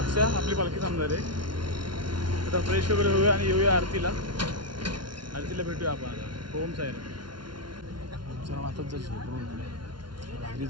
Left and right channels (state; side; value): late; left; 0.71 ms